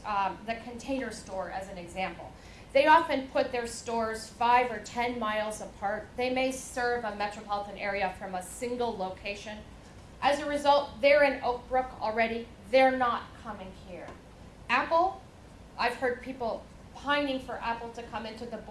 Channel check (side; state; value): both; identical; correlation 1.00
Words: the Container Store as an example. They often put their stores 5 or 10 miles apart. They may serve a metropolitan area from a single location. As a result, they're in Oak Brook already. They're not coming here. Apple, I've heard people pining for Apple to come into the